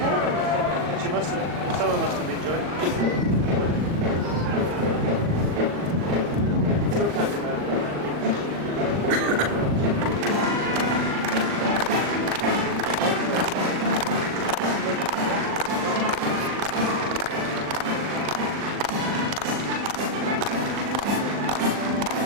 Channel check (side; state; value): left; late; 39 ms